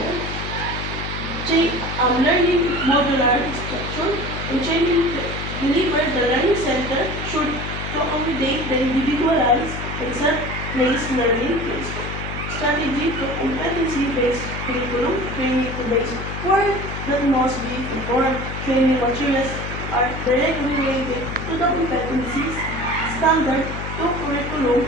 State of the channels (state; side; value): noise; left; hum, 6 dB below the sound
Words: Learning modular structure and training delivered the learning center should accommodate the individualized and self-paced learning strategy to competency-based curriculum training to base work that must be performed. Training materials are directly related to the competencies standard to curriculum